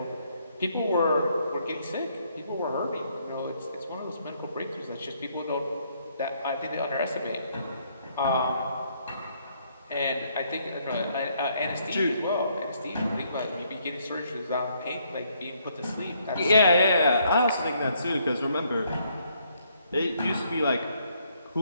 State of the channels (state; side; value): inverted; both; correlation -0.70